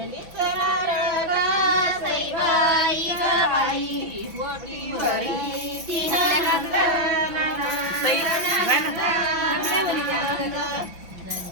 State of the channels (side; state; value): left; late; 6.0 ms